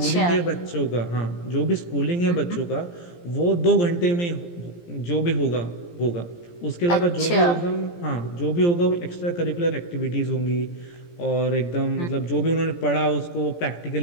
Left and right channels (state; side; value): late; right; 17 ms